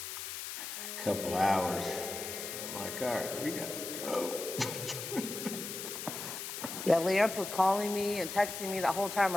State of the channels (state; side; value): noise; left; hiss, 7 dB below the sound